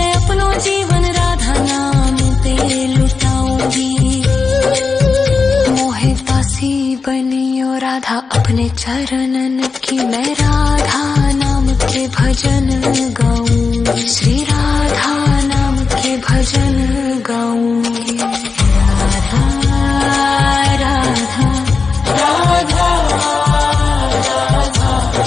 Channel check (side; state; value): right; quieter; 4.6 dB